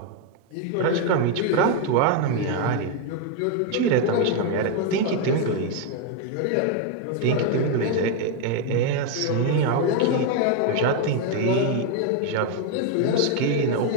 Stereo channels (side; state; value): both; different; correlation 0.01